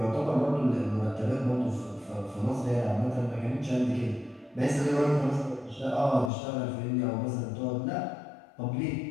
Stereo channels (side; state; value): right; drops out; at 6.3 s